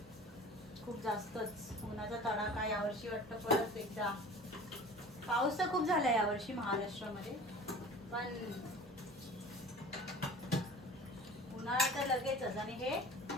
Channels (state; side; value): normal; both; correlation 0.41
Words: खूप जास्तच उन्हाचा तडाखा यावर्षी वाटतं. परत एकदा पाऊस तर खूप झाला यावर्षी महाराष्ट्रामध्ये. पण उन्हाळा तर लगेचच. आणि हे